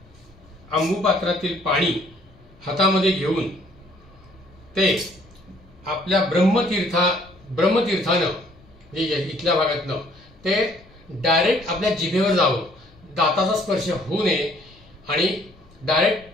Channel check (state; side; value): noise; left; rumble, 27 dB below the sound